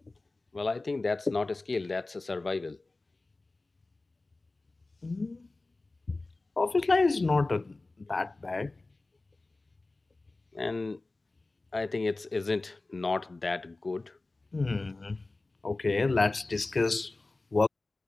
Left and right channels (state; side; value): quieter; right; 3.2 dB